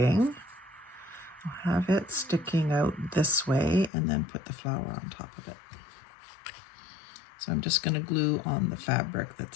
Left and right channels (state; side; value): drops out; right; at 3.9 s